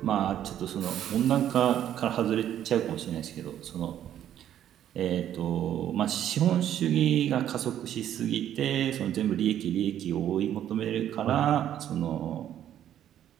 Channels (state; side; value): quieter; left; 10.9 dB